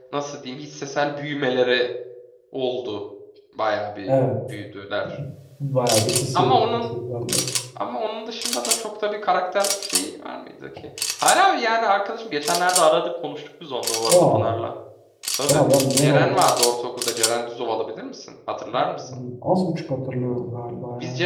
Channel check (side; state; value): both; identical; correlation 1.00